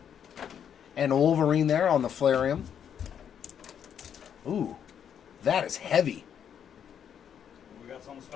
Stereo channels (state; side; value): quieter; right; 8.6 dB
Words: and Wolverine there on the Flairium. Ooh, that is heavy. We got something